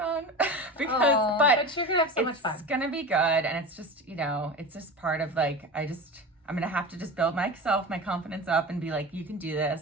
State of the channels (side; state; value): both; normal; correlation 0.30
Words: but you're gonna have so much fun. It's gonna be good. And it's just, it's just part of like, I'm gonna have to just build my confidence up and be like, you can do